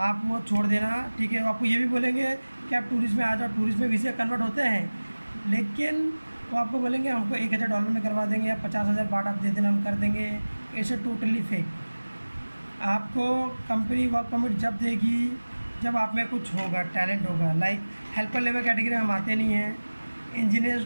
वो छोड़ देना, ठीक है। आपको ये भी बोलेंगे कि आप टूरिस्ट में आ जाओ, टूरिस्ट में वीज़ा कन्वर्ट होते हैं, लेकिन वो आपको बोलेंगे हमको $1,000 में करवा देंगे या 50,000 बाट आप दे देना, हम कर देंगे। ऐसे टोटली फेक। आपको कंपनी वर्क परमिट जब देगी जब आप में कुछ होगा, टैलेंट होगा। लाइक हेल्पर लेवल कैटेगरी में हम आते नहीं हैं। इंजीनियर,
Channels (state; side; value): inverted; both; correlation -1.00